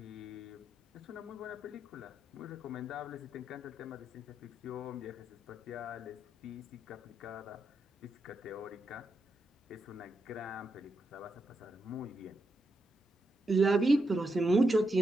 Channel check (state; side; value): normal; both; correlation 0.84